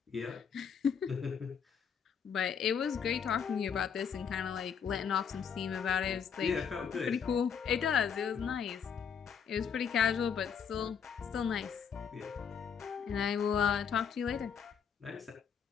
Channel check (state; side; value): quieter; right; 7.1 dB